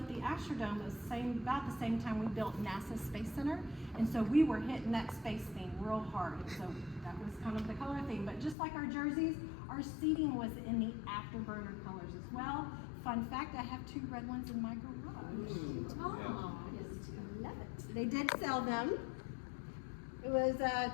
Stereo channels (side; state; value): right; drops out; at 8.6 s